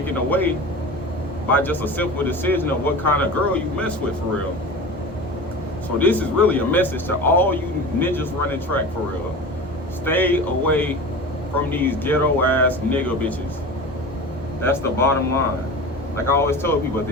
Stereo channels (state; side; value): normal; both; correlation 0.32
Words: away by just a simple decision of what kind of girl you mess with, for real. So this is really a message to all you ninjas running track, for real. Stay away from these ghetto ass nigga bitches. That's the bottom line. Like I always tell people, at